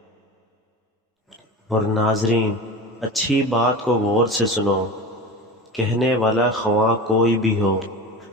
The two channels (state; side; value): normal; both; correlation 0.31